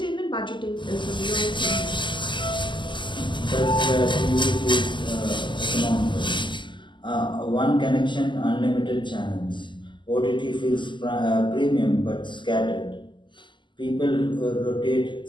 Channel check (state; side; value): late; right; 0.23 ms